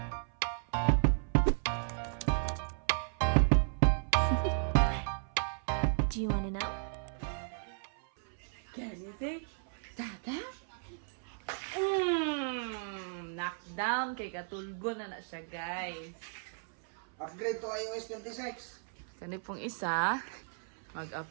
Do you wanna know? Can you say, Tata? Knockdown kay katulgo na siya, guys. Upgrade to iOS 26. Kani pong isa,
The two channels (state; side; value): silent; left; 55 dB below the other